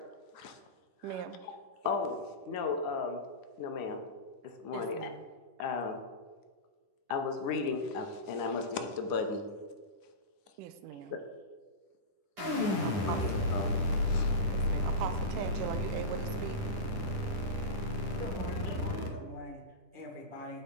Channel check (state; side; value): late; left; 10 ms